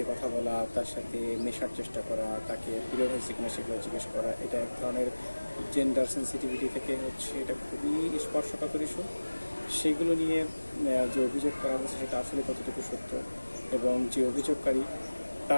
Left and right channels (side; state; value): both; inverted; correlation -1.00